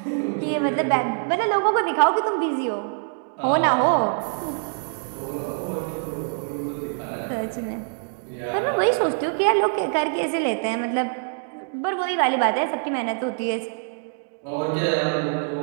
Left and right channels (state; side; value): silent; left; digital silence